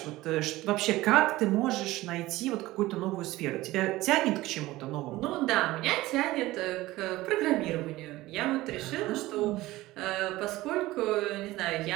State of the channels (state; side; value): quieter; left; 17.9 dB